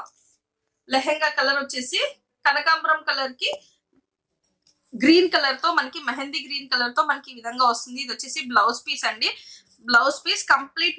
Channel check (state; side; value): identical; both; correlation 1.00